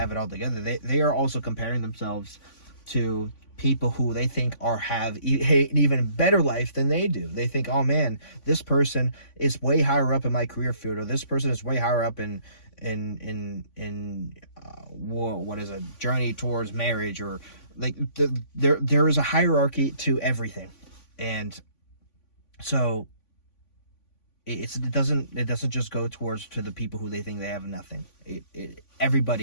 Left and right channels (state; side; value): late; right; 3.5 ms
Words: it all together, they are also comparing themselves to people who they think have an even better life than they do. They think, oh man, this person is way higher up in my career field, or this person is way higher up in what is a journey towards marriage, or like there is a hierarchy to everything. And so it doesn't just go to the people who they think they have nothing.